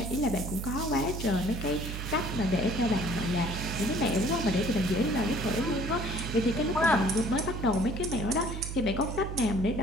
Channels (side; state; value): right; noise; hum, 6 dB below the sound